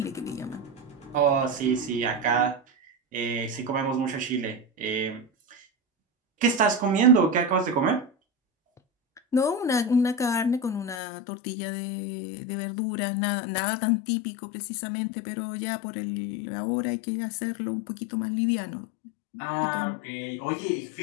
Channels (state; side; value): drops out; right; at 11.0 s